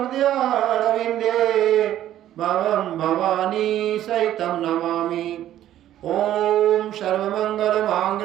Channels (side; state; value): left; quieter; 12.3 dB